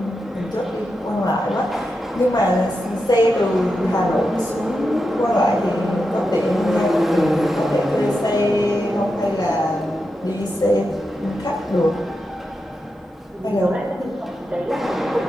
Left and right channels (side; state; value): both; normal; correlation 0.88